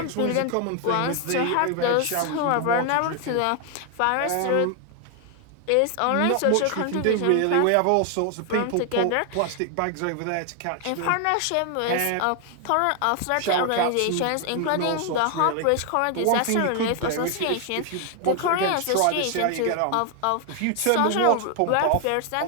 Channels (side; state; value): both; different; correlation 0.00